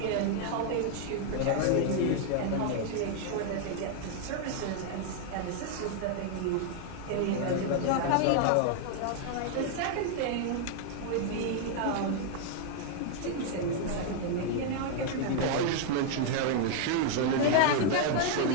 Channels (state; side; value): different; both; correlation 0.00